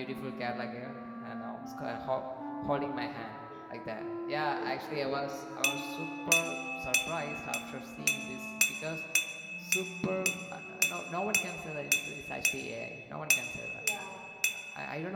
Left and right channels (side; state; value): both; identical; correlation 1.00